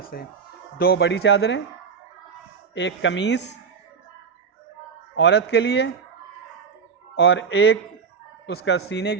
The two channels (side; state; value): left; quieter; 6.0 dB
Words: से है। 2 बड़ी चादरें, एक कमीज़ औरत के लिए और एक उसका सीने